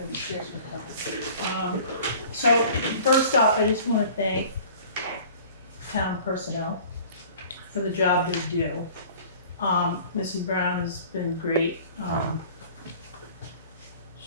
So first off, I just want to thank town personnel for the job they do. Missy Brown has been great.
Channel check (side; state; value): both; inverted; correlation -0.47